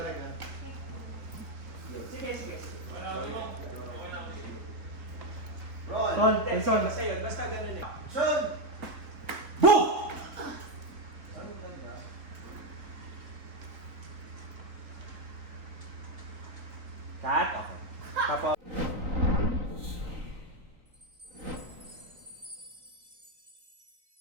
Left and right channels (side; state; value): left; late; 3.6 ms